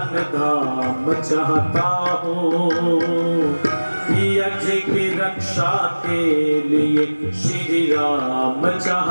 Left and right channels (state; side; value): inverted; both; correlation -1.00